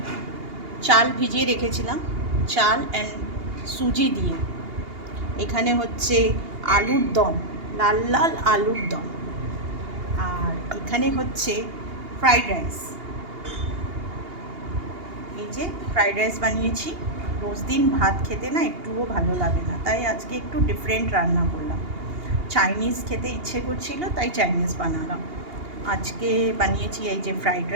চাল ভিজিয়ে রেখেছিলাম, চাল অ্যান্ড সুজি দিয়ে। এখানে হচ্ছে আলুর দম, লাল লাল আলুর দম। আর এখানে হচ্ছে ফ্রাইড রাইস। এই যে ফ্রাইড রাইস বানিয়েছি। রোজ দিন ভাত খেতে না একটুও ভালো লাগে না, তাই আজকে একটু ডিফারেন্ট রান্না করলাম। চাইনিজ খেতে ইচ্ছে করছিল, তাই চাইনিজ বানালাম। আজকে বানিয়েছি এই যে ফ্রাইড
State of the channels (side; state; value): left; late; 2.8 ms